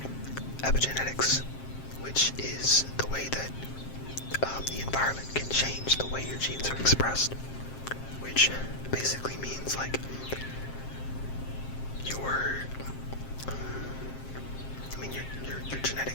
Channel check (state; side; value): late; right; 7.5 ms